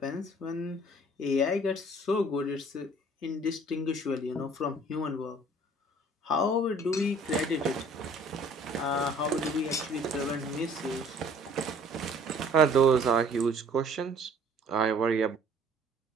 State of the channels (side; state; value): both; normal; correlation 0.54